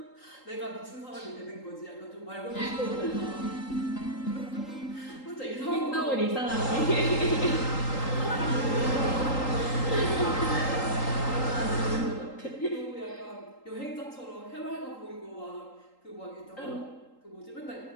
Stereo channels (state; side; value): late; right; 3.8 ms